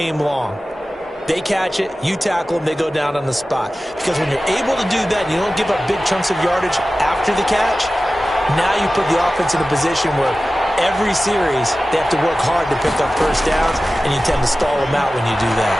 long? They catch it, you tackle them, they go down on the spot. Because when you're able to do that and you don't give up big chunks of yardage after the catch, now you put the offense in a position where every series they have to work hard to pick up first downs, and you tend to stall them out when you do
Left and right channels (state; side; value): normal; both; correlation 0.95